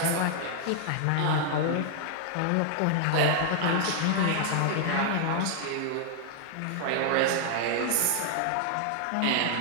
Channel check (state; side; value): different; both; correlation 0.00